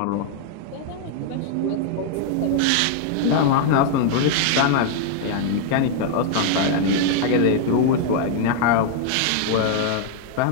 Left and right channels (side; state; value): both; different; correlation 0.00